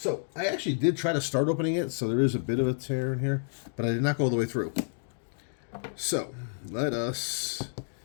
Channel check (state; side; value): silent; right; digital silence